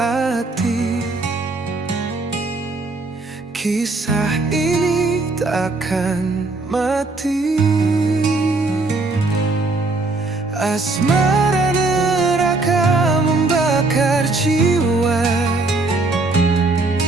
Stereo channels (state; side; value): quieter; left; 3.4 dB